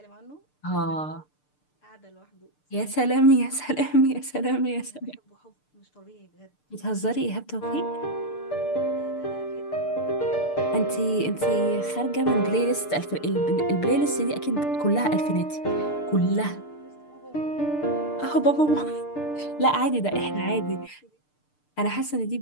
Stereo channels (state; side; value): late; right; 6.7 ms